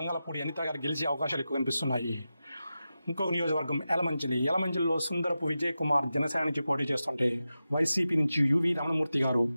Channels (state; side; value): inverted; both; correlation -0.92